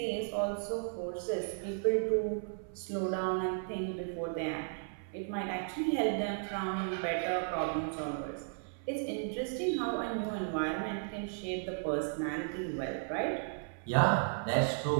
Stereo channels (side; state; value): left; silent; 55 dB below the other